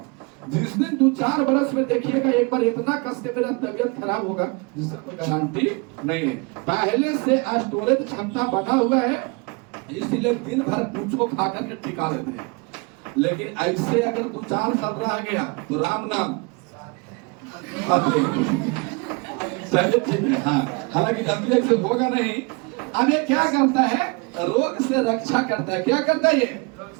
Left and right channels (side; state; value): left; quieter; 29.7 dB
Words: जिस दिन 2-4 बरस में देखिएगा एक बार इतना कस के मेरा तबियत खराब होगा जिससे कोई गारंटी नहीं है। पहले से स्टोरेज क्षमता बना हुआ है, इसलिए दिन भर कुछो खा करके टिका लेते हैं। लेकिन ऐसे अगर 2-4 साल रह गया तो राम नाम ठीक है। हाँ, हालांकि जल्दी ऐसे होगा नहीं। अब ये क्या करता है, रोग से रक्षा करता है। क्या करता है, ये